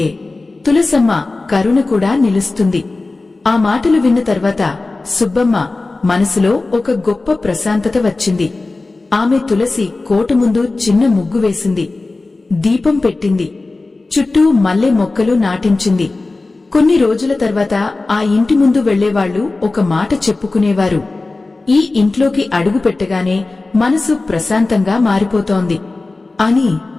తులసమ్మ కరుణ కూడా నిలుస్తుంది. ఆ మాటలు విన్న తర్వాత సుబ్బమ్మ మనసులో ఒక గొప్ప ప్రశాంతత వచ్చింది. ఆమె తులసి కోట ముందు చిన్న ముగ్గు వేసింది. దీపం పెట్టింది. చుట్టూ మల్లె మొక్కలు నాటించింది. కొన్ని రోజుల తర్వాత ఆ ఇంటి ముందు వెళ్లేవాళ్లు ఒక మాట చెప్పుకునేవారు, ఈ ఇంట్లోకి అడుగు పెట్టగానే మనసు ప్రశాంతంగా మారిపోతోంది అని.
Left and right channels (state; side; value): quieter; right; 3.4 dB